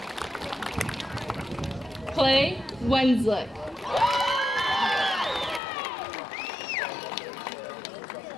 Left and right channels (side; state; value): right; drops out; at 5.6 s